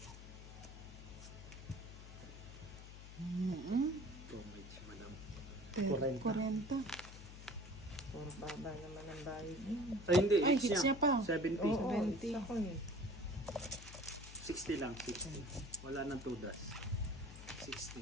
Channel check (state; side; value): noise; left; hum, 13 dB below the sound